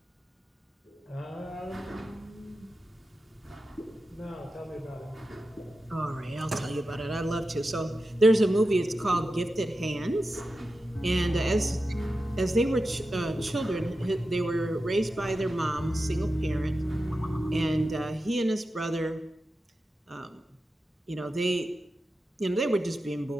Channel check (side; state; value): both; normal; correlation 0.92